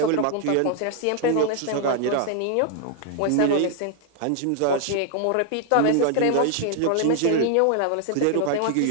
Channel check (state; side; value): different; both; correlation 0.00